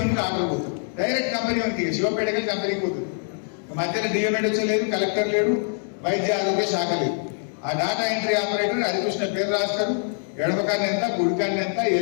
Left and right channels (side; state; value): right; silent; 59 dB below the other